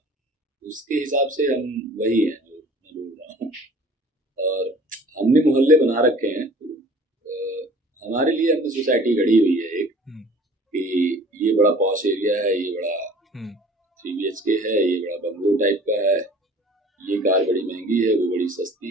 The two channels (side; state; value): both; normal; correlation 0.48